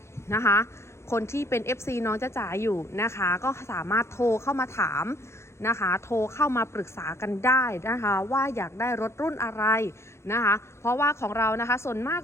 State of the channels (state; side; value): late; right; 0.13 ms